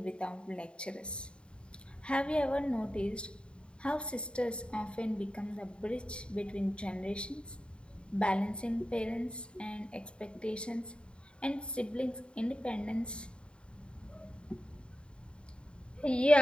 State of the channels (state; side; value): late; right; 0.054 ms